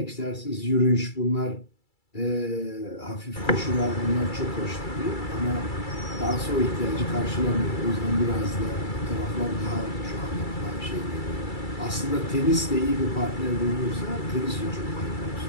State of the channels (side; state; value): right; late; 2.3 ms